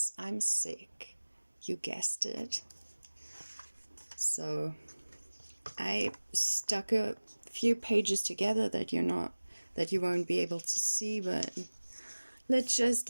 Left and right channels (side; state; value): both; inverted; correlation -1.00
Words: I'm sick, you guessed it. So I stuck a few pages together that you won't be able to see, but let's just